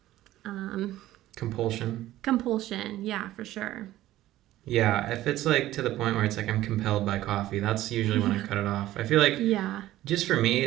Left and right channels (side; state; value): left; quieter; 14.9 dB